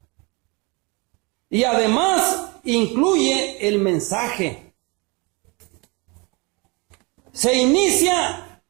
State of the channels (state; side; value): quieter; left; 28.4 dB